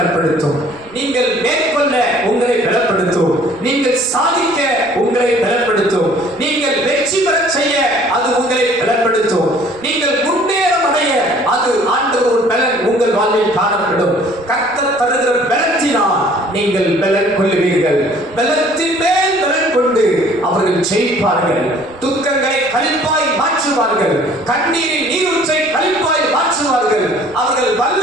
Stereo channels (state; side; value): noise; right; rumble, 26 dB below the sound